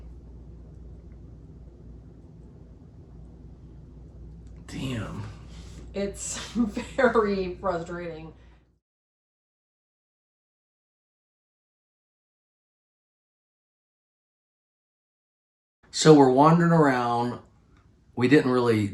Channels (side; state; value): both; identical; correlation 1.00